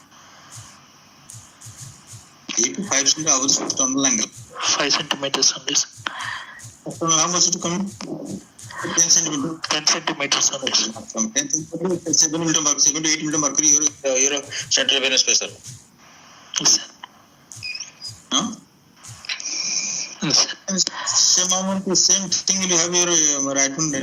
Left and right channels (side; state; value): both; identical; correlation 1.00